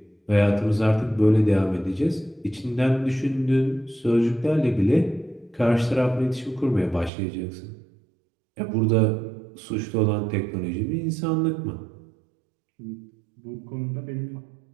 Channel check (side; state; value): left; drops out; at 7.1 s